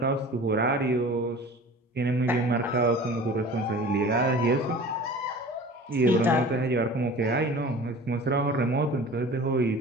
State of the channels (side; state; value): both; normal; correlation 0.41